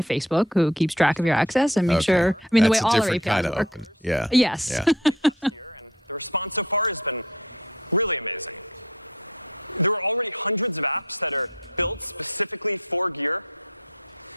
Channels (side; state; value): both; normal; correlation 0.47